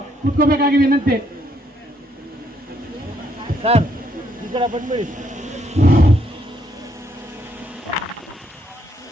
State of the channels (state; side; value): normal; both; correlation 0.72